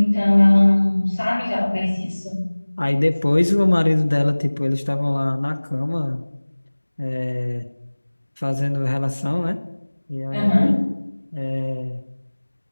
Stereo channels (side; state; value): both; inverted; correlation -1.00